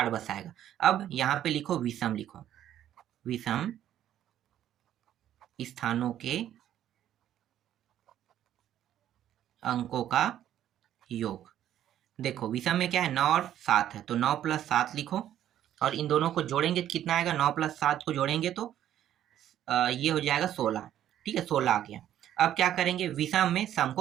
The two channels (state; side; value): quieter; left; 11.4 dB